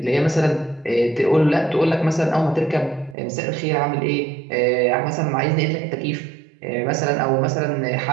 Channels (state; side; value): drops out; left; at 3.2 s